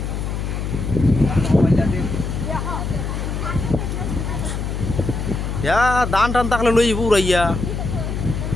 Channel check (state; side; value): noise; left; hum, 3 dB below the sound